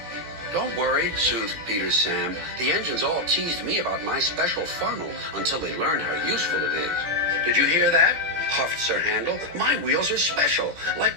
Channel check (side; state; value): left; late; 17 ms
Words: "Don't worry," soothed Peter Sam. "The engines all teased me about my special funnel until they learned how useful it is." "Did you hear that?" huffed Sir Handel. "My wheels are special,